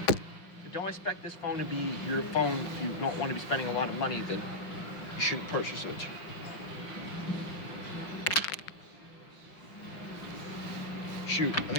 Don't expect this phone to be your phone if you don't want to be spending a lot of money, then you shouldn't purchase it. Shoot, I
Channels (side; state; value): right; late; 6.0 ms